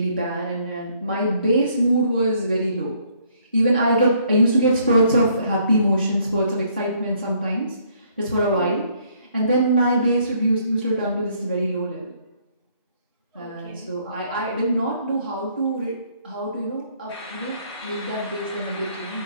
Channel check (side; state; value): both; inverted; correlation -0.66